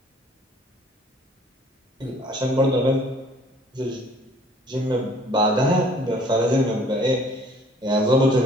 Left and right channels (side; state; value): both; normal; correlation 0.55